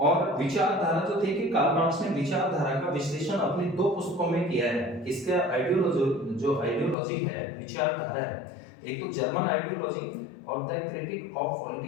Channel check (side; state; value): right; drops out; at 7.0 s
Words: विचारधारा जो थे कि कार्ल मार्क्स ने विचारधारा का विश्लेषण अपनी दो पुस्तकों में किया है। इसका आइडियोलॉजी जो आइडियोलॉजी है, विचारधारा है, एक तो जर्मन आइडियोलॉजी और the critique of